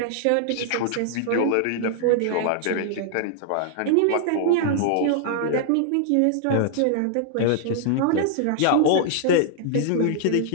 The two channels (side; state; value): both; different; correlation -0.01